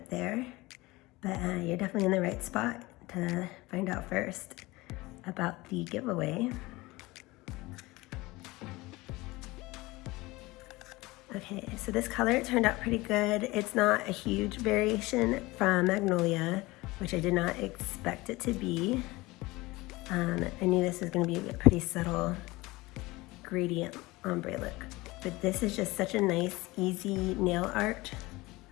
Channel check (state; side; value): quieter; right; 21.1 dB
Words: there. But you're definitely in the right spot to find out first about the giveaway. Okay, so this color turned out pretty good. It's not a huge variation from Magnolia, which I did not expect it to be. I knew this was gonna be a pretty subtle gradient ombre look, but this is just such a nice, easy nail art.